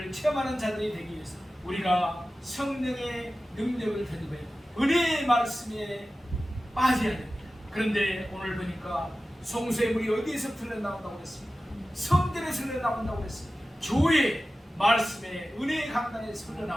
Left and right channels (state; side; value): normal; both; correlation 0.95